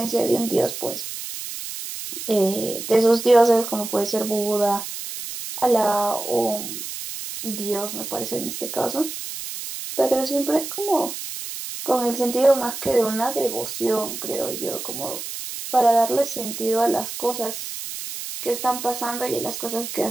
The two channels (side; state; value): right; noise; hiss, 8 dB below the sound